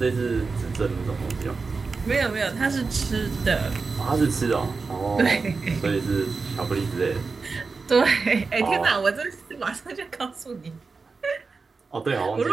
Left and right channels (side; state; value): left; quieter; 4.4 dB